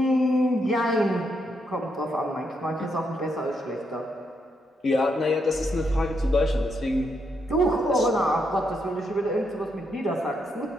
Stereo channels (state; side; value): normal; both; correlation 0.79